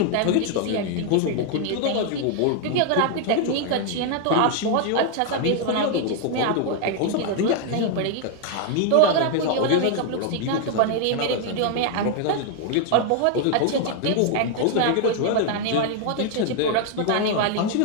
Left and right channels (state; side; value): different; both; correlation 0.00